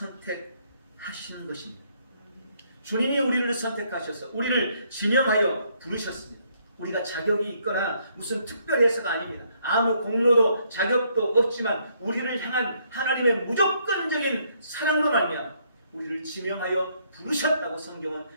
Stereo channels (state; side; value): inverted; both; correlation -0.70